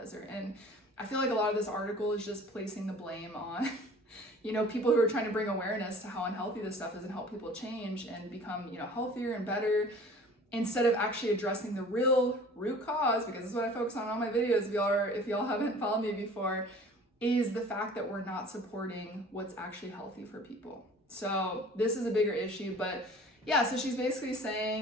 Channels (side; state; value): both; normal; correlation 0.47